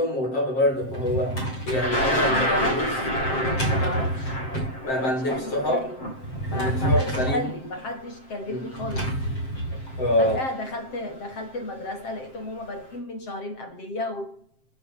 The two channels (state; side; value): late; right; 7.6 ms